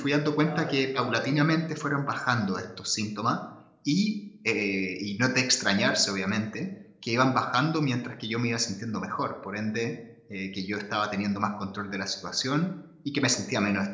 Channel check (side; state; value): both; identical; correlation 1.00